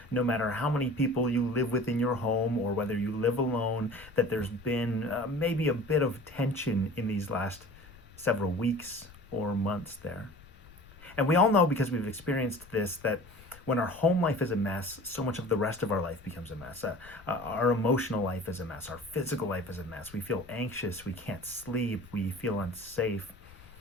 no matter how many people you live with in your home or whether you live alone, that there's been maybe a bit of tension in these last several weeks or months there. And we all know because we've experienced this that when our home life is a mess, so much of the rest of our life becomes a mess. Our emotional life is a mess. Our physical life is a mess. We feel anxious. We can't sleep. We feel unsafe.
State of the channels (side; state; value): left; noise; rumble, 22 dB below the sound